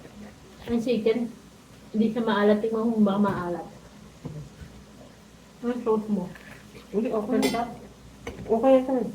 Ang chicken, hindi siya maalat. Tingnan mo kung baka maalat. Ang sauce mo. Hindi, okay. Sarap. Okay ito.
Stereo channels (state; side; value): identical; both; correlation 1.00